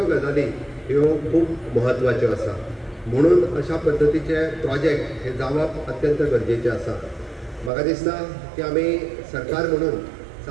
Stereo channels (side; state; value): left; drops out; at 7.7 s